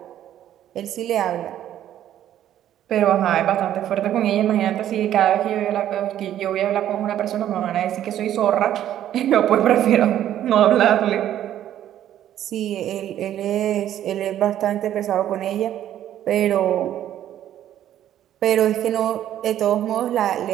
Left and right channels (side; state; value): left; quieter; 11.5 dB